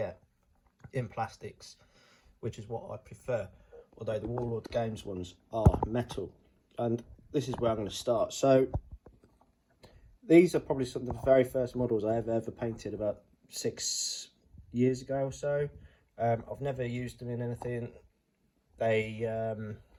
in plastics, which is what I prefer, although the Warlord Games ones are metal. And this is where I'm going to start. So these are probably some of the very first models I ever painted, about 6 years ago or so. I've never used them in anything. They're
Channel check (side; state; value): both; identical; correlation 1.00